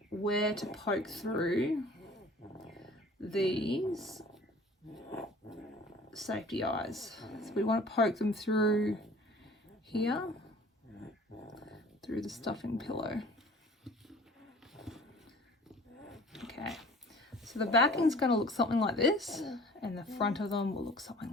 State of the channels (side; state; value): both; normal; correlation 0.48